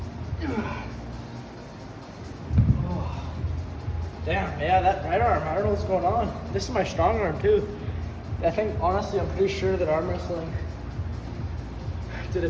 Oh. Damn, yeah, that right arm, I don't know what's going on. This is my strong arm too. I think, honestly, I'm pretty sure that arm wrestling did a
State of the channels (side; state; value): both; identical; correlation 1.00